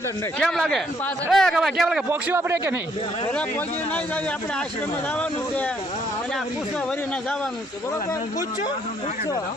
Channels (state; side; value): normal; both; correlation 0.68